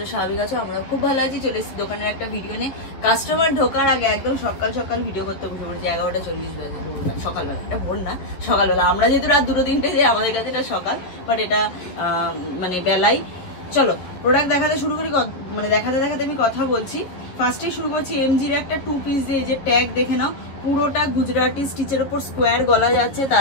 স্বাভাবিক আছো। আমরা খুব ভালো আছি। চলে এসেছি দোকানের একটা ভিডিও নিয়ে। কাস্টমার ঢোকার আগে একদম সকাল সকাল ভিডিও করতে বসে পড়েছি। 11:40 বাজে, সকালবেলা। এটা ভোর না, সকালবেলা। আমরা যেহেতু রাত 2-3টে যাই, আমাদের কাছে এটা সকাল, বাট এটা মানে বেলাই। চলো প্রোডাক্ট দেখাতে শুরু করি। মানে দেখাতে দেখাতে আমি কথা বলছি। ফার্স্টে শুরু করছি এমজির একটা 2 পিস দিয়ে। যে ট্যাগ দেখে নাও, পুরোটা গুজরাটি স্টিচের উপর স্কোয়ার গলা যাচ্ছে,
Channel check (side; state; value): right; late; 11 ms